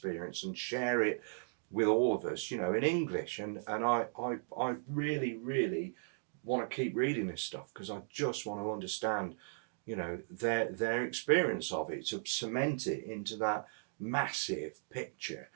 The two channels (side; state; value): left; silent; digital silence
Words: and share it with all of us, in English. And I really, really want to keep reading this stuff, because I just want to understand their experience of it, to cement it into that massive picture